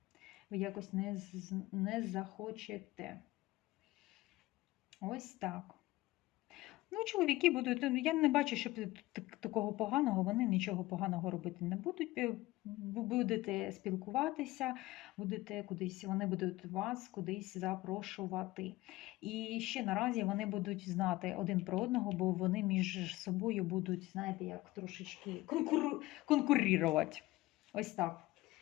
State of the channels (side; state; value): right; quieter; 18.5 dB